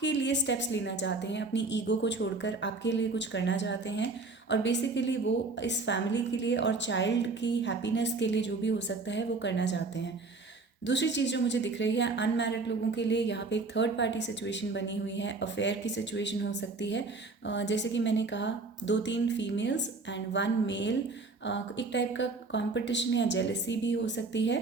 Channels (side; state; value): left; quieter; 3.7 dB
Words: लिए स्टेप्स लेना चाहते हैं, अपनी ईगो को छोड़कर आपके लिए कुछ करना चाहते हैं। और बेसिकली वो इस फैमिली के लिए और चाइल्ड की हैप्पीनेस के लिए जो भी हो सकता है वो करना चाहते हैं। दूसरी चीज़ जो मुझे दिख रही है, अनमैरिड लोगों के लिए यहाँ पे एक थर्ड पार्टी सिचुएशन बनी हुई है। अफेयर की सिचुएशन हो सकती है। जैसे कि मैंने कहा, 2-3 फीमेल्स एंड 1 मेल। एक टाइप का कंपटीशन या जेलसी भी हो सकती